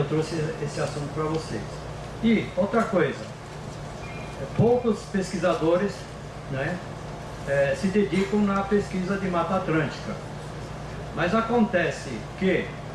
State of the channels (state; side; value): identical; both; correlation 1.00